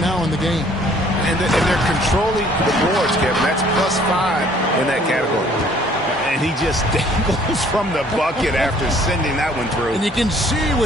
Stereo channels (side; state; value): both; normal; correlation 0.58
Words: in the game. And they're controlling the boards, Kevin. That's +5 in that category. And he just dangles from the bucket after sending that one through. And you can see